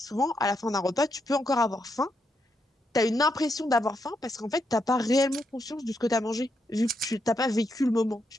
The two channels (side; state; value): both; normal; correlation 0.81